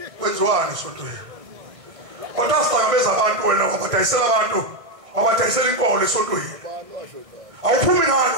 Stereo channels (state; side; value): late; left; 1.5 ms